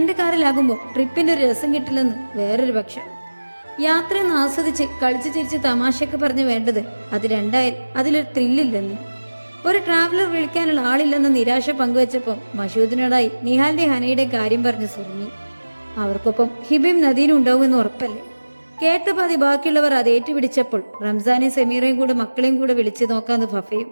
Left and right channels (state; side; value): inverted; both; correlation -1.00